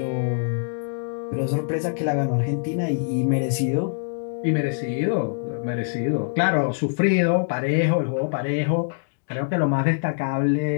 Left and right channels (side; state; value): right; silent; digital silence